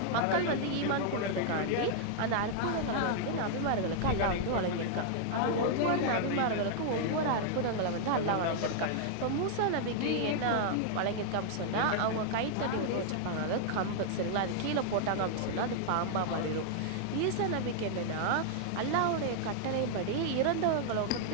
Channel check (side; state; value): both; different; correlation -0.01